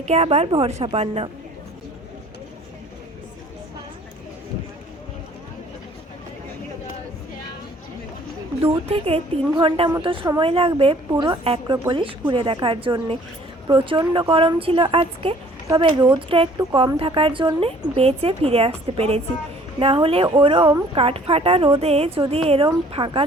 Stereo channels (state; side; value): normal; both; correlation 0.55